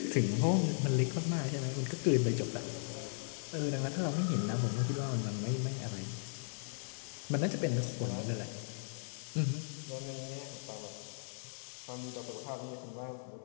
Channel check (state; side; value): silent; right; digital silence